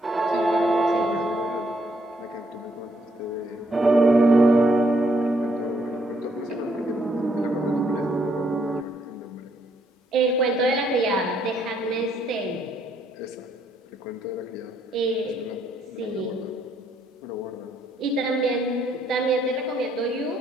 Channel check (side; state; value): both; normal; correlation 0.71